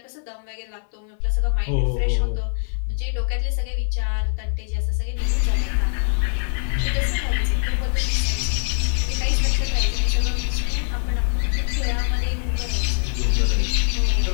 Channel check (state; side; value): silent; right; 61 dB below the other